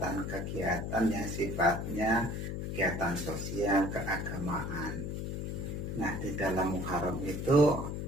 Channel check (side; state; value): left; noise; hum, 4 dB below the sound